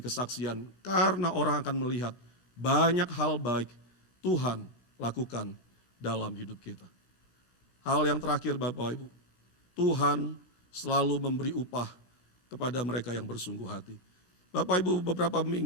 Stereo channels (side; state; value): right; late; 17 ms